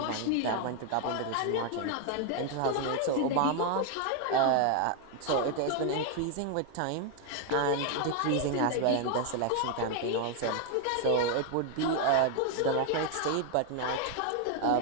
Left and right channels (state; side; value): different; both; correlation 0.01